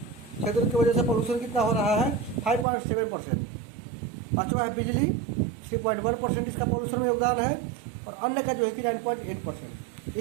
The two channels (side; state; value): left; drops out; at 2.7 s